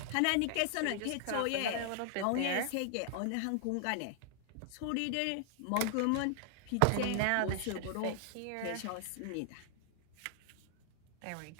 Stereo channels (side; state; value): both; different; correlation 0.00